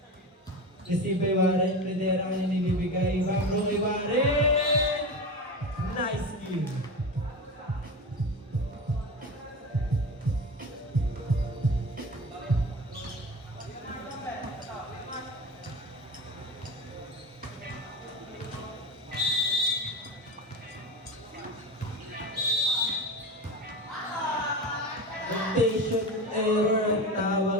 Receive by Warren. Pedera ang nilibigay. Bambro kay Warren. Nice kill. Rotation error ang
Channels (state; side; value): normal; both; correlation 0.27